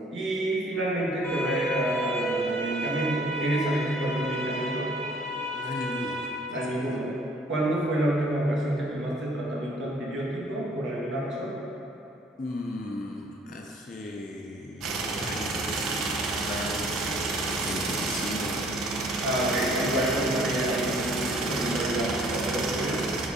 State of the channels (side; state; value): both; normal; correlation 0.58